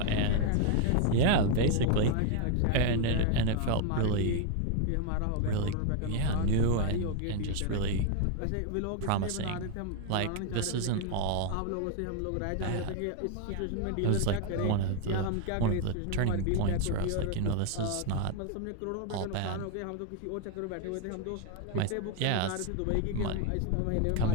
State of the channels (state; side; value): different; both; correlation 0.01